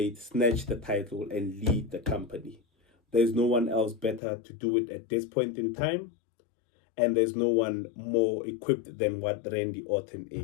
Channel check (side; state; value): right; drops out; at 4.2 s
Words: snatch the title, and lead the company. There's no one else better to do it at this point in time, and there's no one more equipped than what Randy Orton